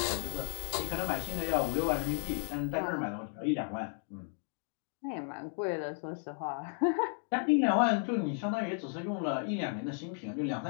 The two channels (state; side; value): silent; right; 55 dB below the other